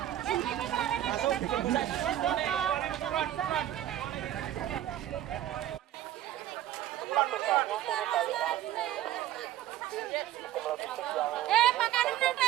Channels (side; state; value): left; quieter; 12.7 dB